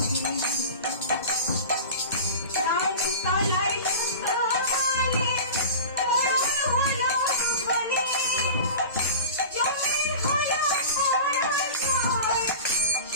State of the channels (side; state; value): both; inverted; correlation -0.34